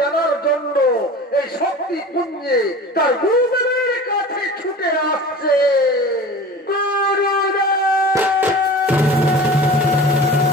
জন্য এই শক্তি পুঞ্জে তার গুরুদেবের কাছে ছুটে আসছে।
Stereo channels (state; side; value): normal; both; correlation 0.37